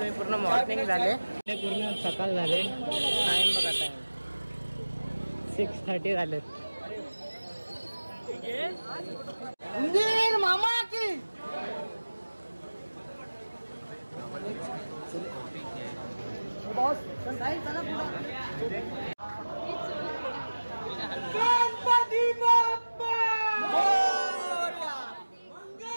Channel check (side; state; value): both; inverted; correlation -1.00